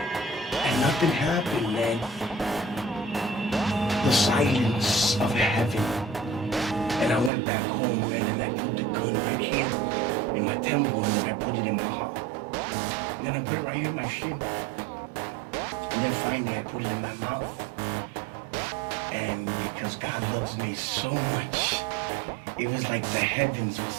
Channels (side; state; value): left; drops out; at 7.3 s